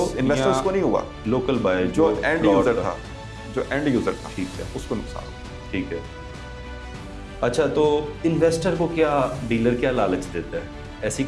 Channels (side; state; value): both; identical; correlation 1.00